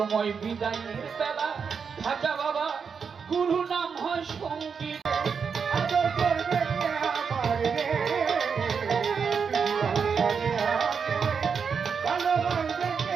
বিদায়ের বেলা খাজা বাবা গুরু নাম হয় সঙ্গীত আদর করবে কে আমার রে, জীবন ছাড়িয়া গেলে ভালোবাসবে কে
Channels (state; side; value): quieter; left; 6.1 dB